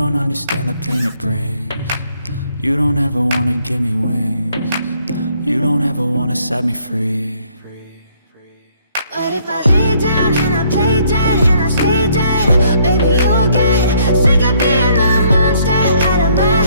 understand the pain it brings. You don't ever wanna give me wings. You don't ever wanna set me free. But if I lay down and I play dead and I stay dead, baby, you'll get sick of being the monster out of my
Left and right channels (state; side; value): inverted; both; correlation -0.66